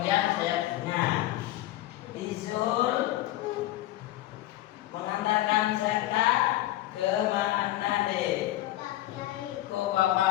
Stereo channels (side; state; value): right; quieter; 15.5 dB